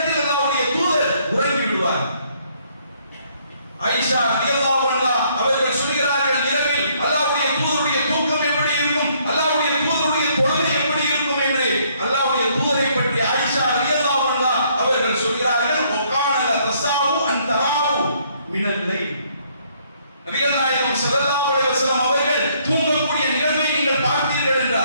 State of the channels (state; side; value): inverted; both; correlation -0.67